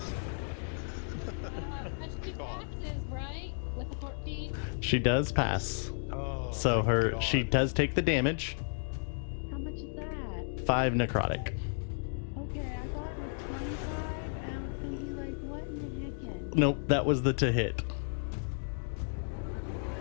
That's 2 passes, right? With a 14? She does pass, Oh, so my she God. does take the damage. How much is that? 5 necrotic. Okay, I thought it was 25, and I was thinking, like, what in the heck? Nope, that was the to hit.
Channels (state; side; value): silent; right; digital silence